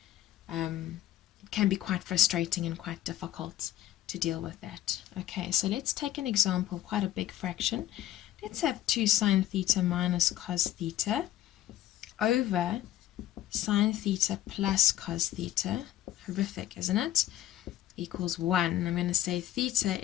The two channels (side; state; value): right; quieter; 13.3 dB